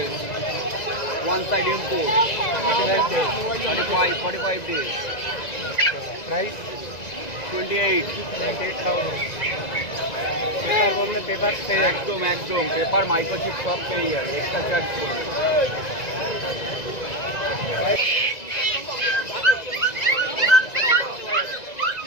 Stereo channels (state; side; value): late; right; 2.0 ms